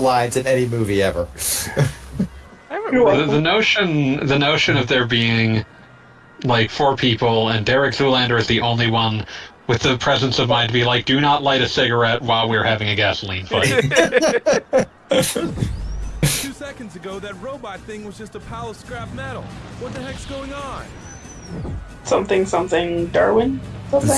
in any movie ever. The notion of there being like 4 people and Derek Zoolander is the only one with the presence of mind to be like, do not light a cigarette while we're having a gasoline fight. 2 seconds ago, that robot thing was just a pile of scrap metal. What the heck's going on? Something Darwin. Something.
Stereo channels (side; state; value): both; identical; correlation 1.00